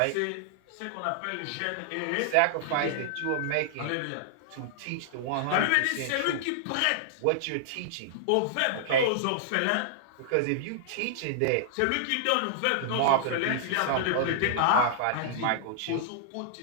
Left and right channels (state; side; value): different; both; correlation -0.01